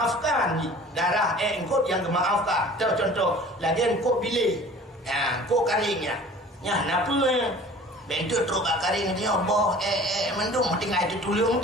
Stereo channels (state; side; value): normal; both; correlation 0.46